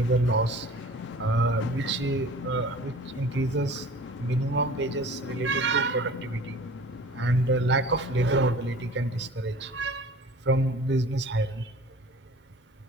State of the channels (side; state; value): both; normal; correlation 0.44